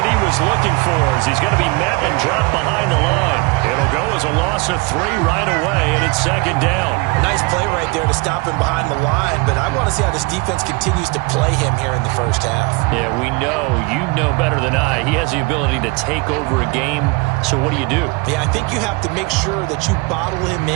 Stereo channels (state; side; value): quieter; left; 26.9 dB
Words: he was looking for as he's going to be met and dropped behind the line. It'll go as a loss of 3 right away, and it's second down. Nice play right there to stop him behind the line, but I want to see how this defense continues to play him here in the first half. Yeah, we know. You know better than I. He has the ability to take over a game, so what do you do? Yeah, I think you have to make sure that you bottle him